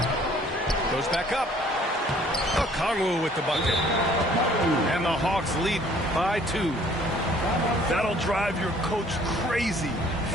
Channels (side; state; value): both; normal; correlation 0.57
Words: Goes back up. Okongwu with the bucket. And the Hawks lead by 2. That'll drive your coach crazy,